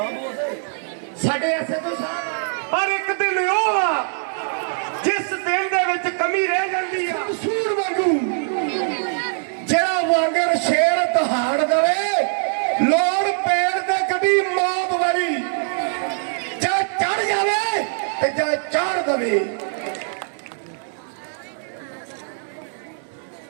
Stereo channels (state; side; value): silent; left; 64 dB below the other